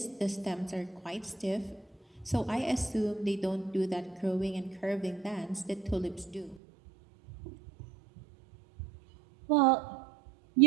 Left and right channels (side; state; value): left; drops out; at 6.6 s